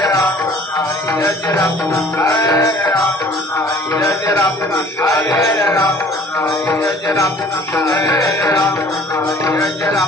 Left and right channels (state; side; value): normal; both; correlation 0.51